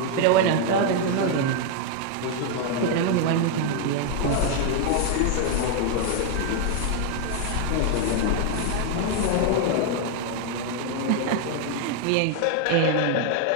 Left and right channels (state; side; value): different; both; correlation 0.00